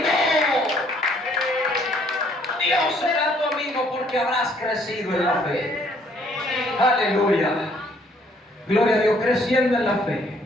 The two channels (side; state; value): both; normal; correlation 0.64